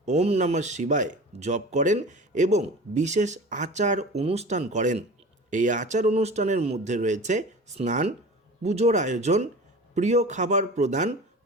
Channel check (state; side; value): normal; both; correlation 0.37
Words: ওম নমঃ শিবায় জপ করেন এবং বিশেষ আচার অনুষ্ঠান করেন। এই আচার অনুষ্ঠানের মধ্যে রয়েছে স্নান, পুজোর আয়োজন, প্রিয় খাবার প্রদান,